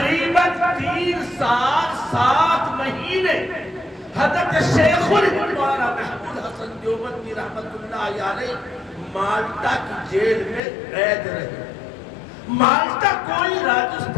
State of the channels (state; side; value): drops out; right; at 10.6 s